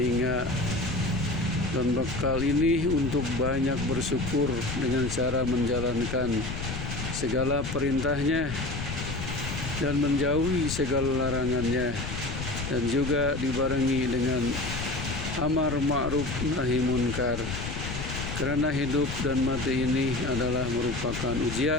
dan bekal ini untuk banyak bersyukur dengan cara menjalankan segala perintahnya dan menjauhi segala larangannya, dan juga dibarengi dengan amar ma'ruf nahi munkar. Karena hidup dan mati ini adalah merupakan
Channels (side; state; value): left; noise; rumble, 6 dB below the sound